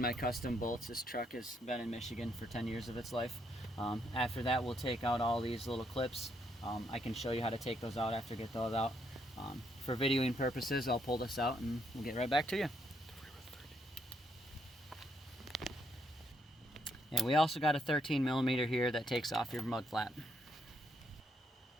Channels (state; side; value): normal; both; correlation 0.75